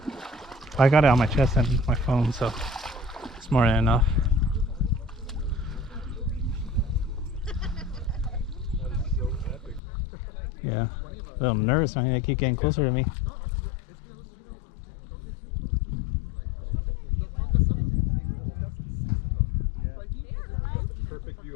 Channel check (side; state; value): right; drops out; at 9.8 s